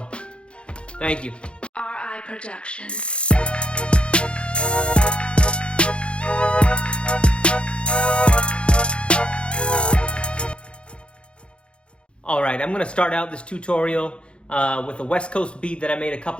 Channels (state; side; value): late; right; 0.057 ms